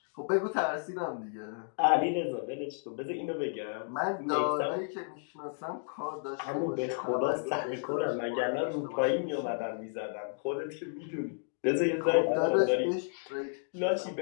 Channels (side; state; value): right; silent; digital silence